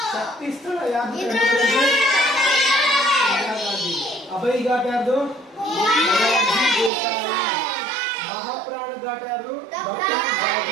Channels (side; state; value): left; drops out; at 6.9 s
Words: ಶಕ್ತಿ ಸ್ಥಳ ಯಾರ್ದು ಅಭಯ್ ಘಾಟ್ ಯಾರ್ದು ಮಹಾಪ್ರಾಣ ಘಾಟ್ ಯಾರ್ದು